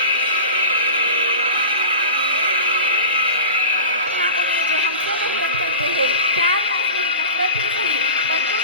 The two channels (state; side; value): inverted; both; correlation -0.34